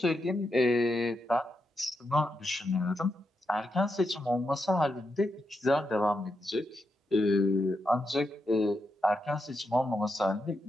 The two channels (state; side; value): normal; both; correlation 0.84